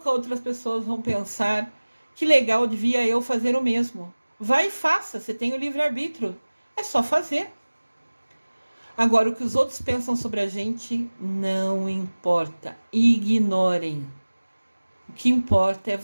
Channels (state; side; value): inverted; both; correlation -1.00